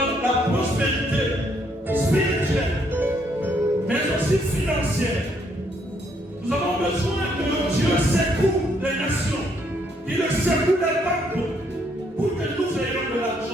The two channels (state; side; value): normal; both; correlation 0.71